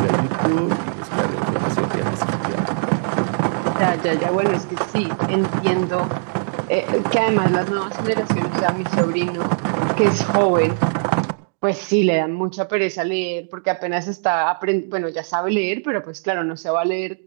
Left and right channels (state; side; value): silent; left; digital silence